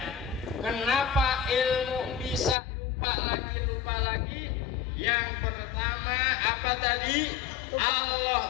Kenapa ilmu bisa lupa lagi? Yang pertama apa tadi?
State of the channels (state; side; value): drops out; right; at 2.6 s